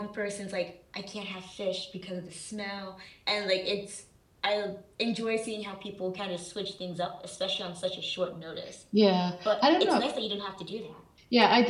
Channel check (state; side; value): identical; both; correlation 1.00